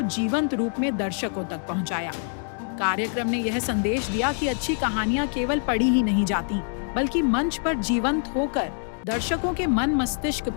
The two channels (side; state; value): right; silent; 59 dB below the other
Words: जीवंत रूप में दर्शकों तक पहुंचाया। कार्यक्रम ने यह संदेश दिया कि अच्छी कहानियां केवल पढ़ी ही नहीं जाती, बल्कि मंच पर जीवंत होकर दर्शकों के मन मस्तिष्क